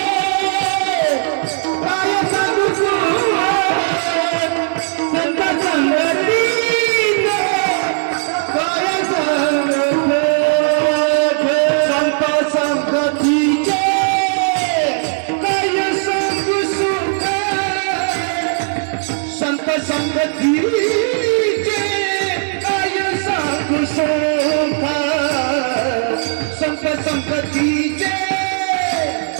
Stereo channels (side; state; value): left; silent; digital silence